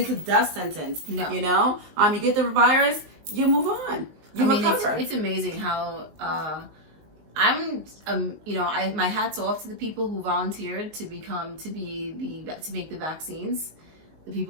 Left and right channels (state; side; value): late; left; 19 ms